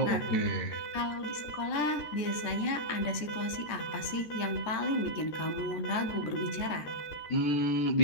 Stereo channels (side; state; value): right; late; 13 ms